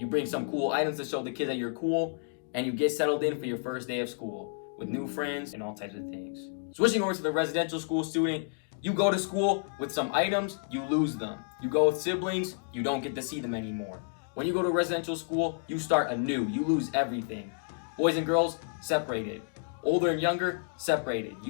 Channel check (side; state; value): right; silent; digital silence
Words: bring some cool items to show the kids that you're cool, and you get settled in for your first day of school with new friends and all types of things. Switching over to the residential school student, you go to school with some items, you lose them. You go with siblings, you don't get to see them anymore. When you go to residential school, you start anew. You lose everything. Boys and girls, separated. Older and younger, separated.